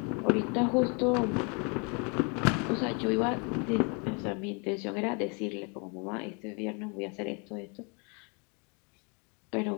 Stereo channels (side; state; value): right; quieter; 34.1 dB